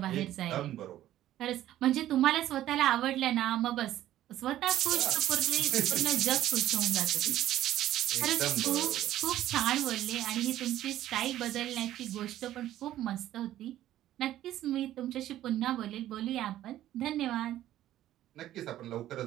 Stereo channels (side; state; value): left; quieter; 13.2 dB